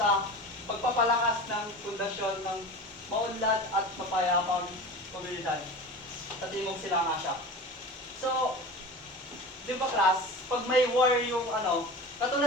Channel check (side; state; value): both; normal; correlation 0.33